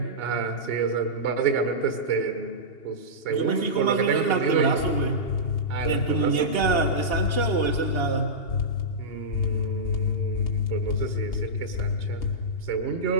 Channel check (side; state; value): right; late; 2.8 ms